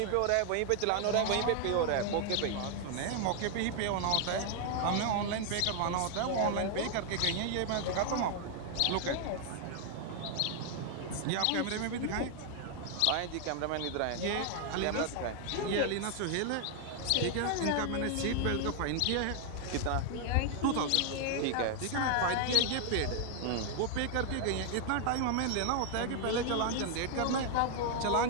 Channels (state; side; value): different; both; correlation 0.00